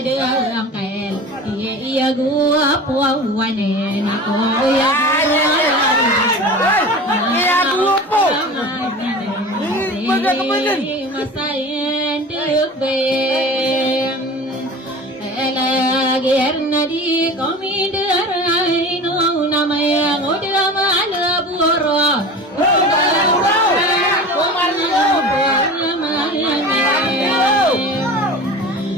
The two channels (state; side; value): normal; both; correlation 0.35